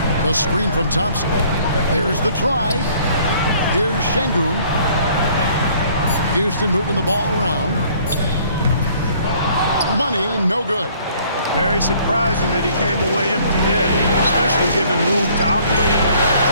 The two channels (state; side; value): inverted; both; correlation -0.58